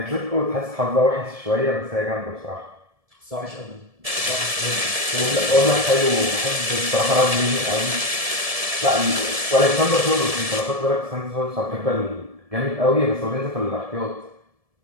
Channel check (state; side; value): late; left; 1.7 ms